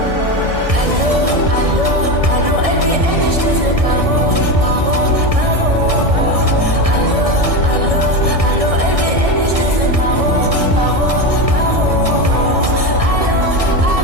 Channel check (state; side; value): late; left; 1.6 ms